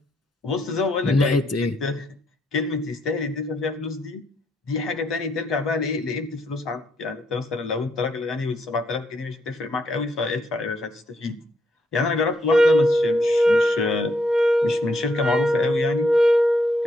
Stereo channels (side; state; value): both; normal; correlation 0.74